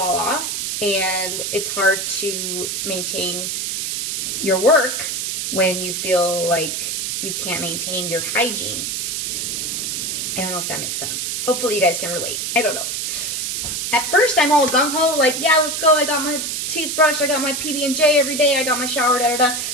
off. and it's hard to maintain your work when you feel like you can't maintain your hygiene. I don't know if that makes sense. Hopefully you guys can relate. I don't know. At first, I'm all gung-ho, like, yeah, let's go. I got my toothbrush. I got my PB&J every day. I got my shower, da-da-da.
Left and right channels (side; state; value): right; noise; hiss, 2 dB below the sound